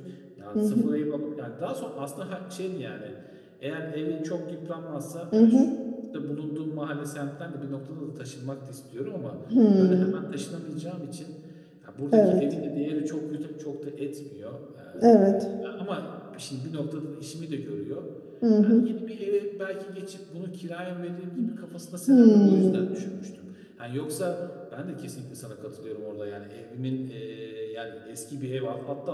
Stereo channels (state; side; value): identical; both; correlation 1.00